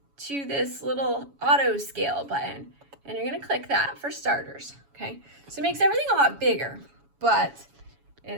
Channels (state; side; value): late; left; 7.1 ms